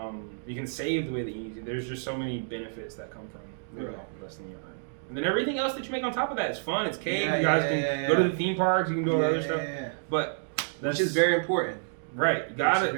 You can save the way that you need to. There's just so many benefits that come from living off less than you earn. And then everything else that you make on top of that is fun. It's cake. You guys can go to the theme parks. You can do all the other stuff. But that's which is very important. Right. You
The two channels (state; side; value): silent; left; digital silence